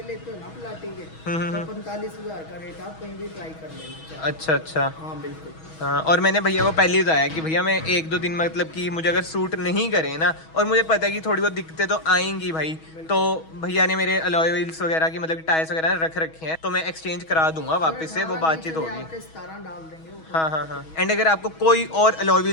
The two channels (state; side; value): late; right; 6.2 ms